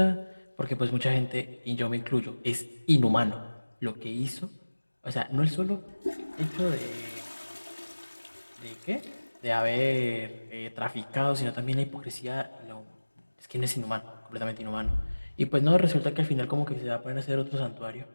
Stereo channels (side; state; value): both; inverted; correlation -1.00